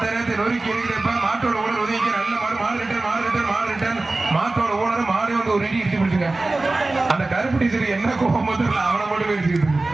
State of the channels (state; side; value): quieter; left; 3.1 dB